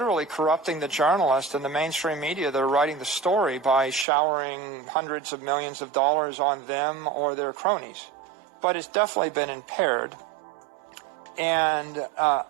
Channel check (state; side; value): drops out; left; at 4.0 s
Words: corrupting the journalists and the mainstream media that are writing the story by showering hundreds of millions of dollars on them or their cronies. But it's definitely been impaired. And